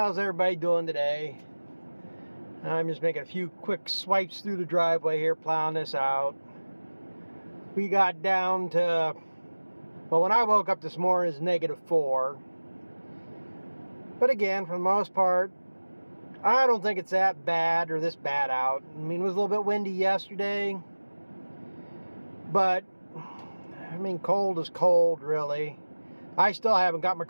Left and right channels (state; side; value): inverted; both; correlation -1.00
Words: everybody doing today? I'm just making a few quick swipes through the driveway here, plowing this out. We got down to, well, when I woke up this morning, it's -4. But again, for the most part, I don't think it's that bad or this bad out. I mean, it was a little bit windy yesterday, but I mean, cold is cold, really. I still haven't got my